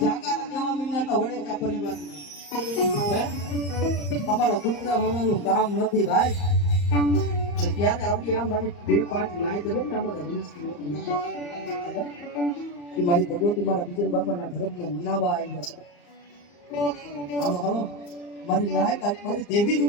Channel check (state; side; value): late; right; 34 ms